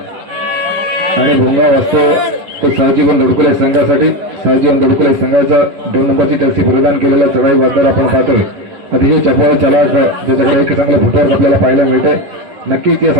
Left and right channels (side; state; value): left; late; 11 ms